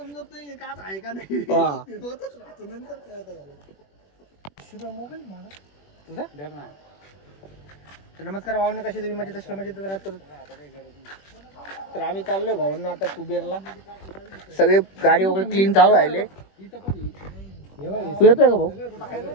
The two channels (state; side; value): late; right; 21 ms